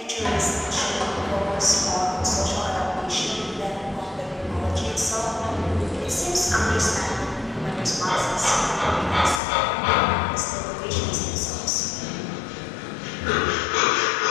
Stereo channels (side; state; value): right; drops out; at 9.4 s